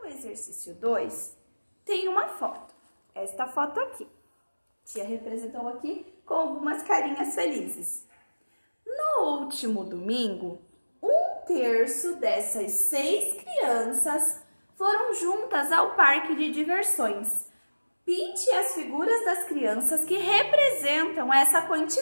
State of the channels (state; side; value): inverted; both; correlation -1.00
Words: exercício 2, tem uma foto. Esta foto aqui. A tia representou aqui com algumas carinhas felizes. No último domingo, 1/3 dessas 6 crianças foram juntas ao parque de diversões. Pinte as figuras das crianças que representam essa